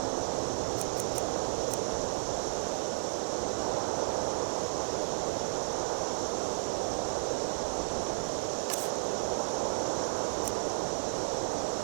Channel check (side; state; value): left; silent; digital silence